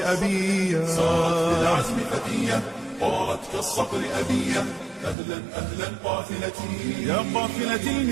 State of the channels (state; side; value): drops out; left; at 5.2 s